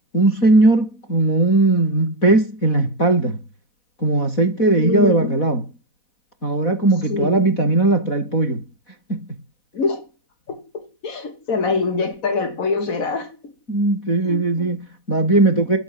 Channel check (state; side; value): late; right; 4.1 ms